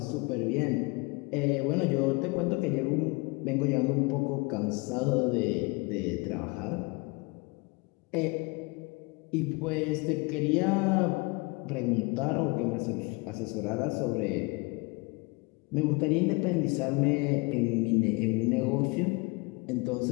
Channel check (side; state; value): right; quieter; 27.4 dB